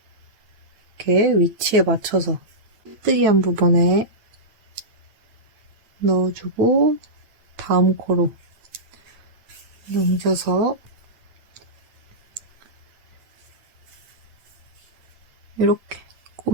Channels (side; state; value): left; late; 8.9 ms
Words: 이렇게 위치에 맞춰서 빼뜨기한 부분에 넣어주고 다음 코로 넘겨서 이렇게